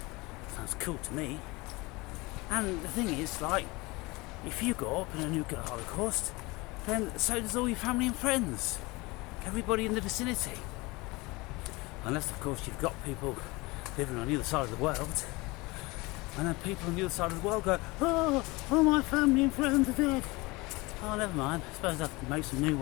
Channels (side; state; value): right; quieter; 23.5 dB